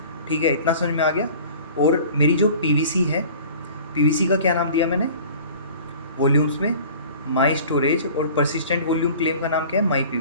ठीक है, इतना समझ में आ गया। और मेरी जो पीवीसी है पीवीसी का क्या नाम दिया मैंने वॉल्यूम्स में, माई स्टोरेज, और परसिस्टेंट वॉल्यूम क्लेम का नाम क्या है, माई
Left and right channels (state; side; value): inverted; both; correlation -0.44